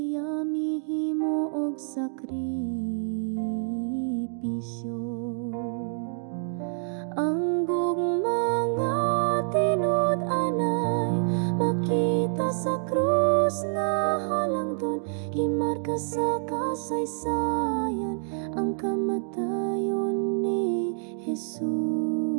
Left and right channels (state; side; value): silent; left; digital silence